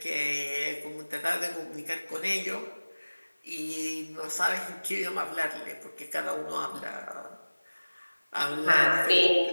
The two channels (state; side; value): inverted; both; correlation -1.00